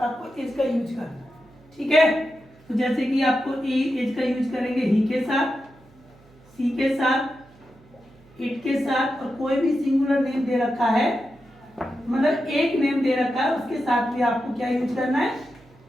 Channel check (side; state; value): right; noise; hum, 27 dB below the sound